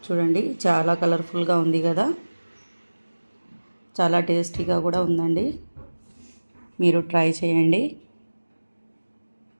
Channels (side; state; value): both; inverted; correlation -1.00